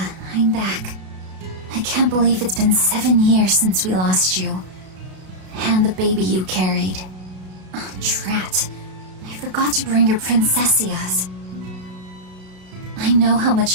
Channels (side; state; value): left; late; 33 ms